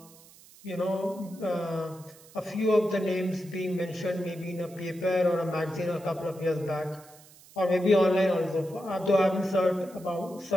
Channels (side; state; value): right; noise; hiss, 23 dB below the sound